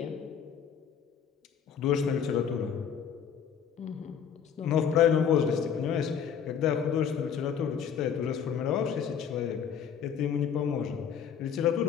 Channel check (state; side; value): quieter; right; 7.8 dB